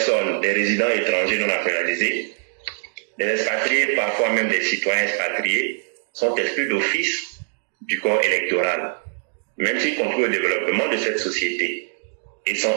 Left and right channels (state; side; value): silent; left; digital silence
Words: des résidents étrangers non naturalisés, des expatriés, parfois même des citoyens expatriés, sont exclus d'office du corps électoral, même s'ils contribuent au développement de cette société et sont